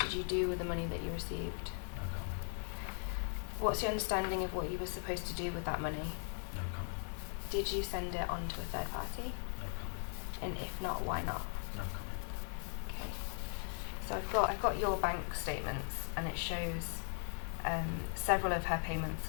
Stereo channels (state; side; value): silent; right; 52 dB below the other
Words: you do with the money that you received? No comment. What's your understanding of what you were supposed to do with that money? No comment. Did you send it on to a third party? No comment. And if not, why not? No comment. Okay. So I've got your bank statements, and it shows several of her